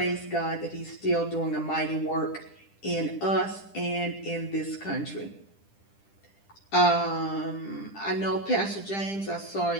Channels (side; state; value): right; late; 10 ms